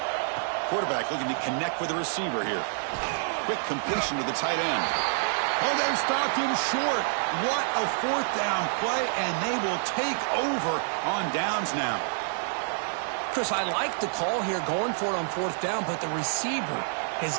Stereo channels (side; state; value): left; silent; digital silence